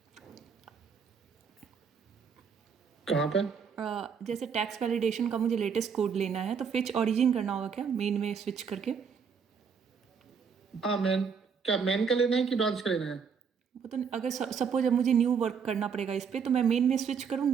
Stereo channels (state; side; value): quieter; left; 6.4 dB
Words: कहाँ पे? जैसे टैक्स वैलिडेशन का मुझे लेटेस्ट कोड लेना है तो फेच ओरिजिन करना होगा क्या मेन में स्विच करके? हाँ मैन, क्या मैन का लेना है कि ब्रांच का लेना है? वो तो अगर सपोज अब मुझे न्यू वर्क करना पड़ेगा इस पे तो मैं मेन में स्विच